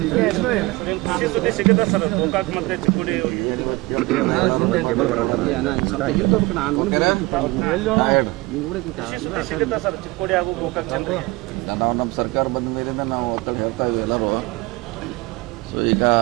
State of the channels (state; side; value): quieter; left; 22.6 dB